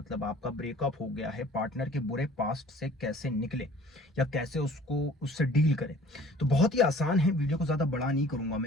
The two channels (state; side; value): normal; both; correlation 0.51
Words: आपका ब्रेकअप हो गया है, पार्टनर के बुरे पास्ट से कैसे निकले या कैसे उससे डील करें। तो बहुत ही आसान है, वीडियो को ज्यादा बड़ा नहीं करूंगा